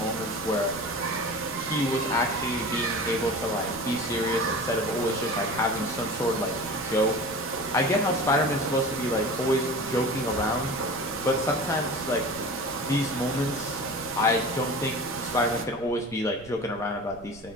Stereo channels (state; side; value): noise; right; rumble, 21 dB below the sound